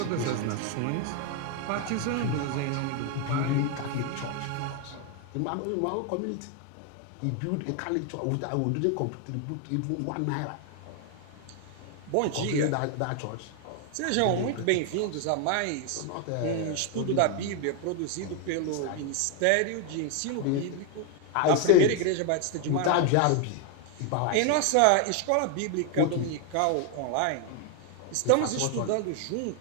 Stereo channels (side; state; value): both; different; correlation 0.00